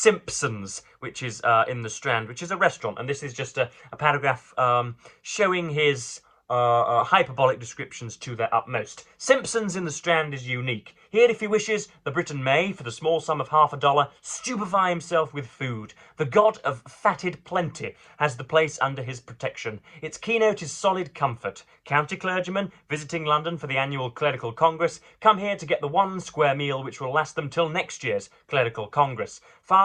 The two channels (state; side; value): identical; both; correlation 1.00